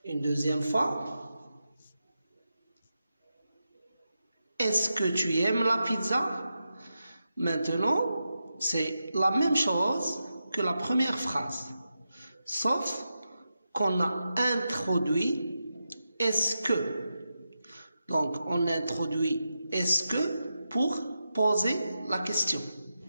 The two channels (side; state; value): both; inverted; correlation -0.89